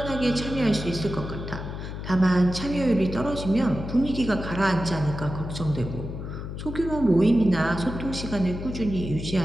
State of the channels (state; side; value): noise; left; hum, 7 dB below the sound